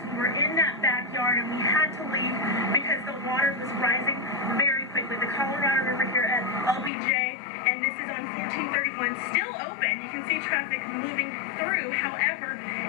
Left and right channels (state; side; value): drops out; right; at 6.9 s